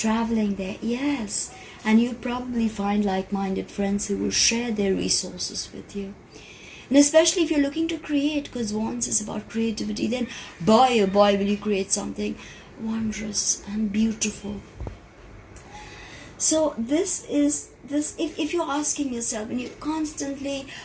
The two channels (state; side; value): identical; both; correlation 1.00